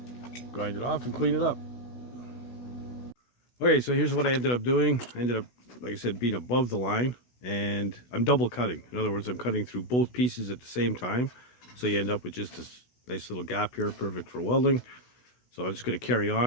Grind it off and clean it up. Okay, so here's what I ended up doing. I ended up, like I said, being above the line, and I'm double cutting. In other words, I'm cutting through both pieces at the same time, so you end up with just this nice little gap here, perfect for welding. So I'm just going to carry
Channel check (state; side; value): late; right; 16 ms